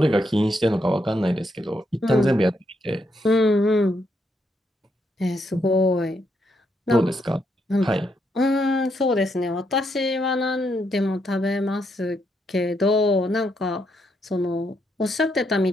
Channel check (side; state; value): both; normal; correlation 0.78